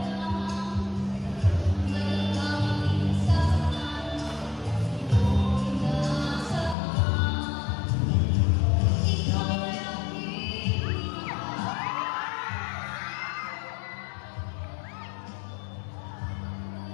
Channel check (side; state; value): right; drops out; at 6.8 s